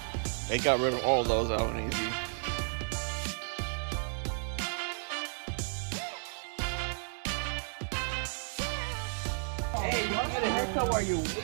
They got rid of all those out and easy. Hey, you want to get a haircut while you're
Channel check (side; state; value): left; silent; 56 dB below the other